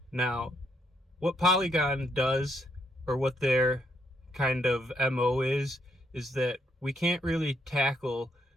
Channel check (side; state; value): both; normal; correlation 0.74